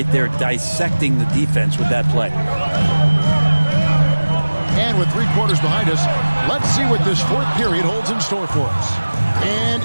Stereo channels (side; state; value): both; inverted; correlation -1.00